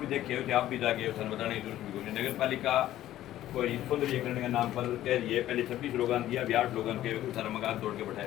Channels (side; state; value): right; quieter; 13.5 dB